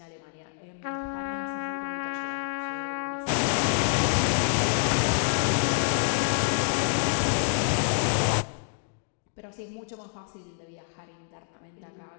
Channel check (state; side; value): silent; right; digital silence